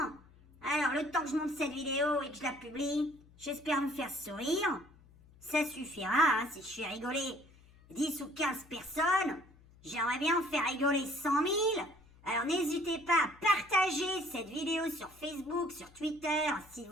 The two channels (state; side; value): noise; left; hum, 25 dB below the sound